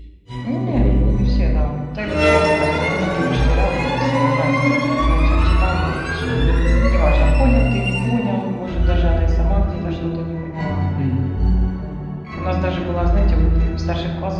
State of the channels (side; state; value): both; identical; correlation 1.00